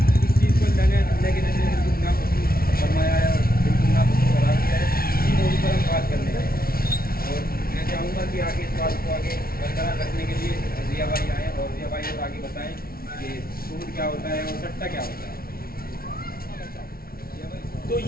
اس چیز کو اللہ کے نبی نے بالکل ناپسند فرمایا ہے اور بالکل ناپسند قرار دیا ہے. اسی موضوع پر ہم بات کرنے آئے ہیں اور میں چاہوں گا کہ آگے اس بات کو آگے برقرار رکھنے کے لیے ضیاء بھائی آئیں اور ضیاء بھائی اور آگے بتائیں کہ سود کیا ہوتا ہے اور سٹہ کیا ہوتا ہے. تو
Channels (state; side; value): late; right; 0.43 ms